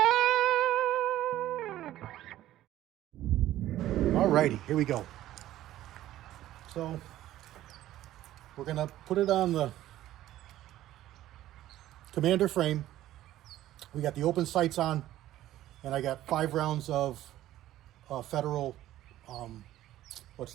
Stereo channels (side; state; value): left; quieter; 13.9 dB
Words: Alrighty, here we go. So we're gonna put it on the commander frame. We got the open sights on, and I got 5 rounds of Federal, what's